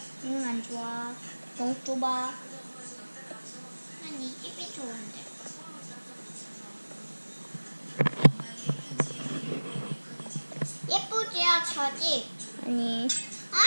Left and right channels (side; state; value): both; inverted; correlation -1.00